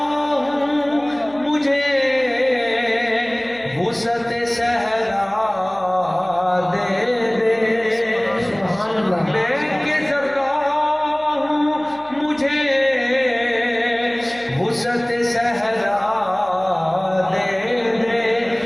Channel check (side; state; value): left; noise; hum, 27 dB below the sound